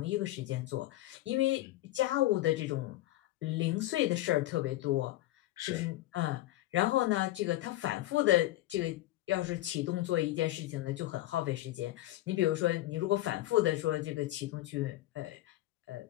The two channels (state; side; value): quieter; right; 16.0 dB